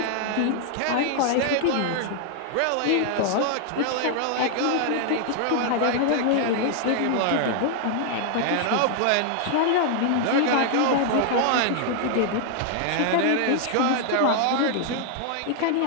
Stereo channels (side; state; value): both; different; correlation 0.00